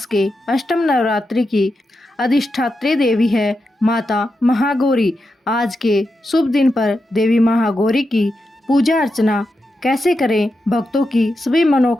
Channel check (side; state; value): both; normal; correlation 0.88